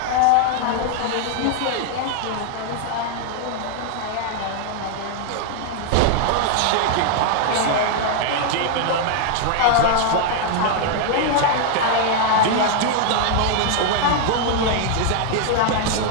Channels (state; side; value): different; both; correlation 0.00